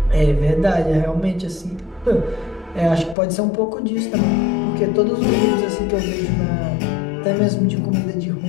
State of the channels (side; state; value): right; drops out; at 3.2 s